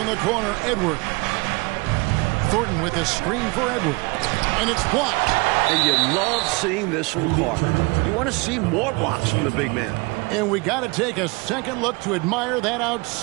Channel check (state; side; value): quieter; left; 26.7 dB